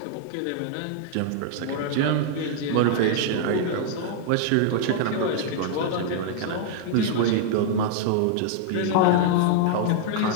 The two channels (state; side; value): different; both; correlation 0.00